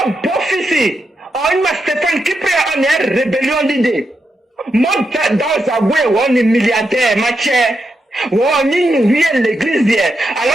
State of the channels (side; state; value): both; normal; correlation 0.85